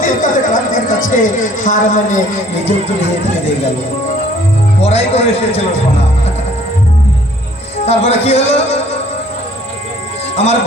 কাছে, ক্রান্তির কাছে হার মানে নিজের তুলে ফিরে গেল। পড়াই করে এসেছিল সোনা। তারপরে কি হলো, আমার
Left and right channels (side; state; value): both; normal; correlation 0.57